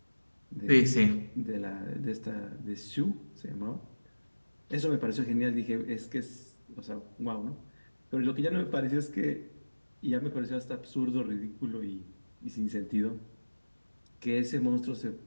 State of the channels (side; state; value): both; inverted; correlation -1.00